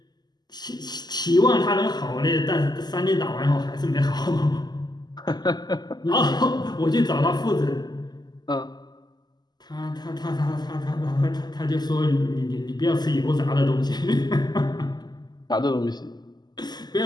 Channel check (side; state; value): right; late; 0.20 ms